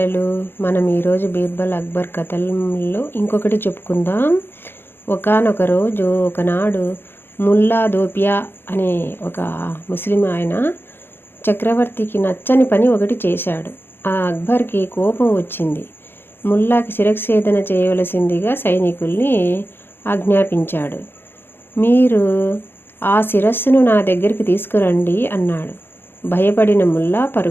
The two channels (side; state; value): right; late; 0.10 ms